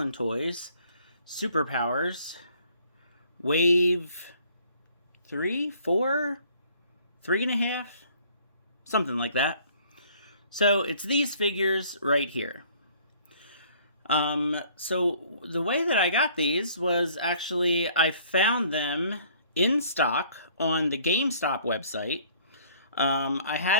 Toys Superpowers Wave 3, 4, 3.5, something like that. So it's these figures right here. So the way that I got these was actually I found them in stock on the GameStop website. I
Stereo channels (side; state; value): both; inverted; correlation -0.58